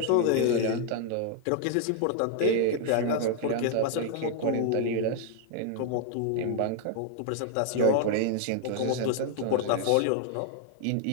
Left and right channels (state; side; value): different; both; correlation 0.00